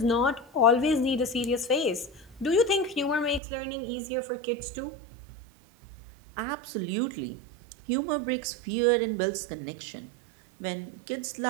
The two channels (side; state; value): left; drops out; at 3.4 s